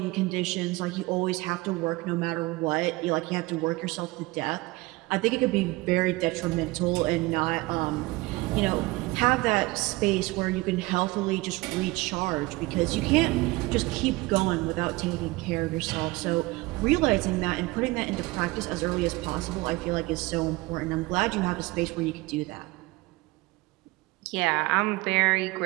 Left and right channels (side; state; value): left; quieter; 22.2 dB